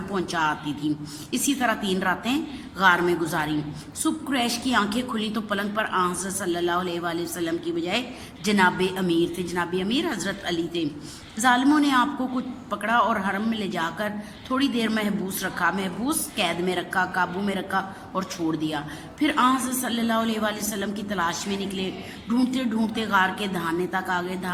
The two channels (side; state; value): both; identical; correlation 1.00